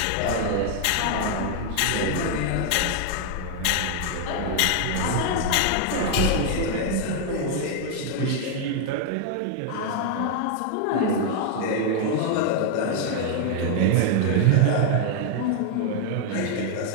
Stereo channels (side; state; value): both; different; correlation 0.00